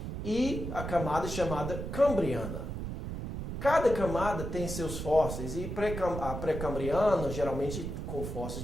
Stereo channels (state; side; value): noise; right; rumble, 5 dB below the sound